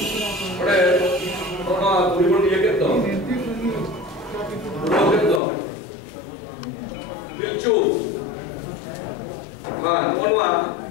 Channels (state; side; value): drops out; right; at 5.4 s